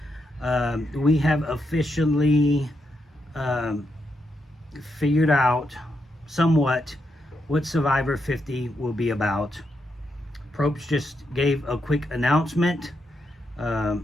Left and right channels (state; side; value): normal; both; correlation 0.82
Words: We have officially figured out somewhat what Survivor 50 will be about. Probst just gave a quick announcement. I